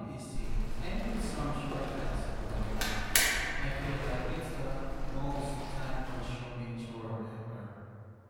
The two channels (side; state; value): both; identical; correlation 1.00